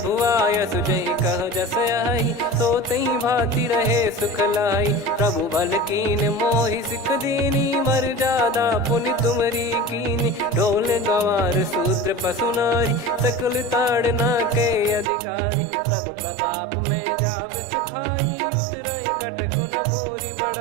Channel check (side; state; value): left; drops out; at 15.1 s